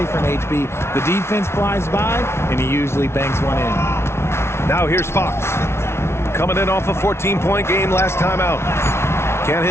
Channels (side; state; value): right; late; 0.12 ms